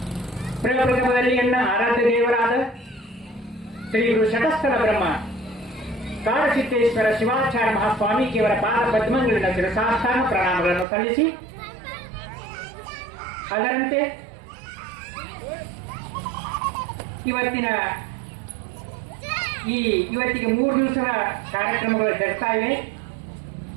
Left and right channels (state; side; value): drops out; left; at 10.9 s